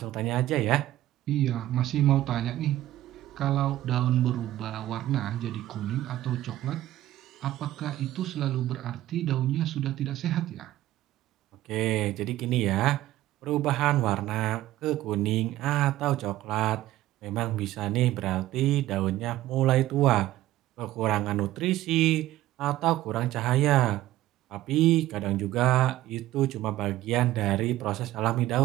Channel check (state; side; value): quieter; left; 14.9 dB